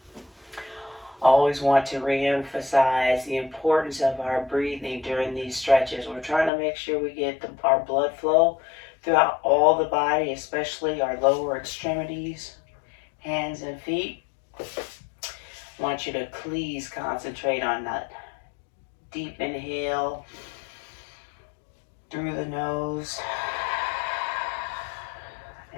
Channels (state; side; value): drops out; right; at 6.5 s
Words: Always want to re-emphasize the importance of our breathing during these stretches. We're trying to make sure we get our blood flow throughout all the body, especially our lower extremities, hands and feet. I want you to please concentrate on that deep inhale through the nose